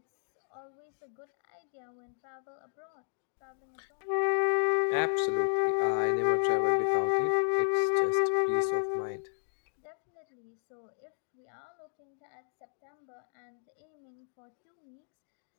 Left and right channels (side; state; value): right; silent; digital silence